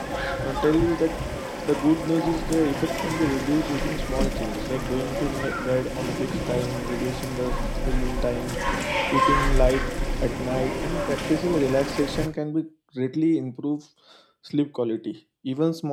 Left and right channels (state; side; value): identical; both; correlation 1.00